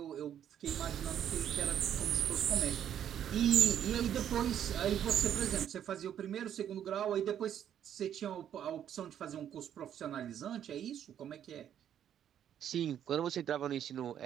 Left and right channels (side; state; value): left; quieter; 9.8 dB